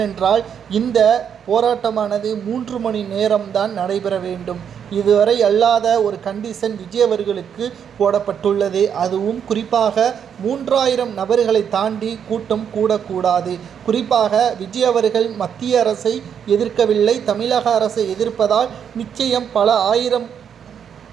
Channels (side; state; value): left; quieter; 8.0 dB